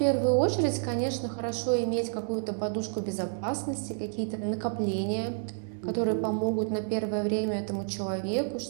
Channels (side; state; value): left; silent; digital silence